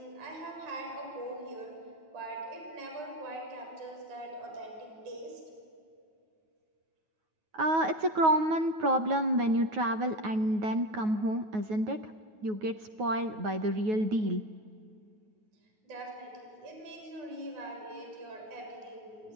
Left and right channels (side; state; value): left; late; 9.4 ms